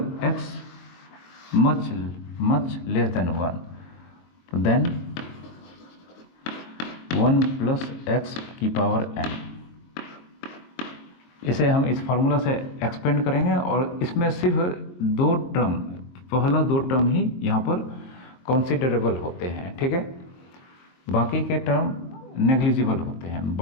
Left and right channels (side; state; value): right; late; 23 ms